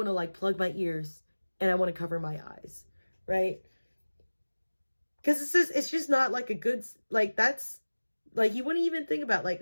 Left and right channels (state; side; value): inverted; both; correlation -1.00